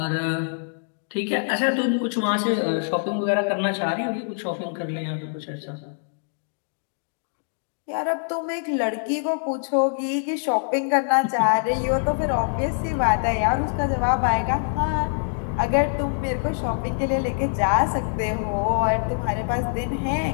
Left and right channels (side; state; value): right; silent; digital silence